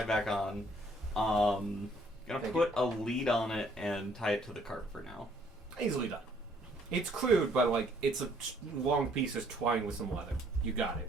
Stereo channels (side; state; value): both; normal; correlation 0.64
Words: back on. Gonna Thank put a lead on it and tie it to the cart for now. Easily done. It's crude, but like it's a long piece of twine with some leather. You got